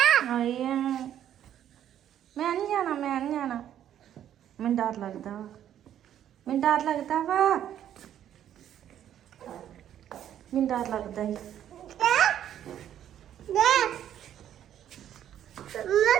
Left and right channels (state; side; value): quieter; left; 10.6 dB